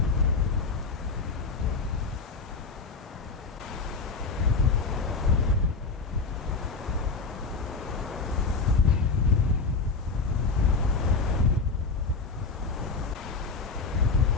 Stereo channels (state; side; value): quieter; right; 4.3 dB